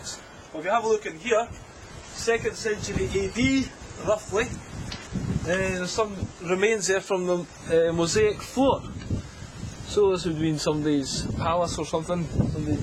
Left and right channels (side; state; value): both; identical; correlation 1.00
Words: Well, if you have a look in here, 2nd century AD, roughly, there's some remains there from the mosaic floor. So this would have been somebody's palace or something,